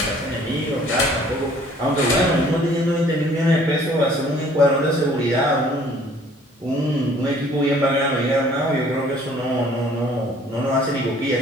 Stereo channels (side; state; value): both; normal; correlation 0.56